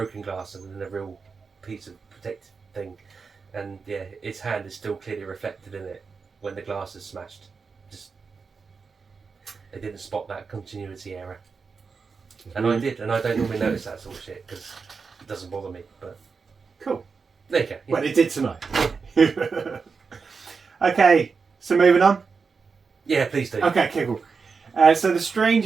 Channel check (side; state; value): left; quieter; 5.1 dB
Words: glass and then a real piece of protective thing, and yeah, his hand is still clearly reflected in it when the glass is smashed. Just they didn't spot that continuity error, and I did, and I don't normally notice that sort of shit because it doesn't bother me. But cool. There you go. Yeah. Well, it did tonight. Okay, so moving on. Yeah, please do. Okay, cool. So the